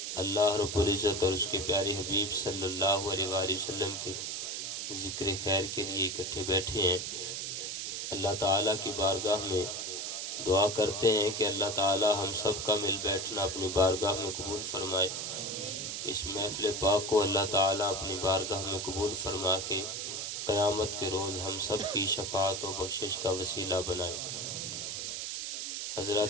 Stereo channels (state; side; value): noise; right; hiss, 4 dB below the sound